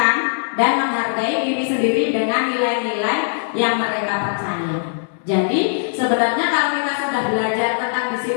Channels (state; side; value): silent; right; digital silence